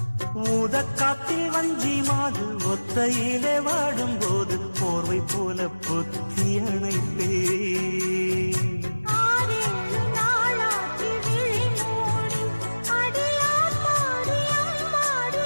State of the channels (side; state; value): both; inverted; correlation -1.00